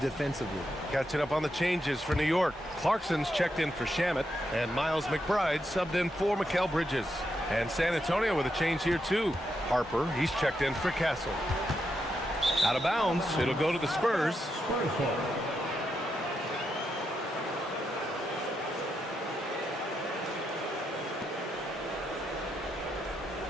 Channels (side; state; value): both; normal; correlation 0.83